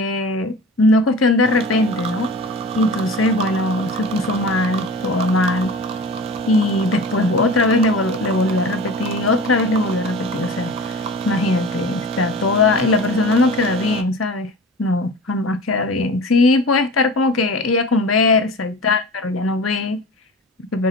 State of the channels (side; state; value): both; normal; correlation 0.36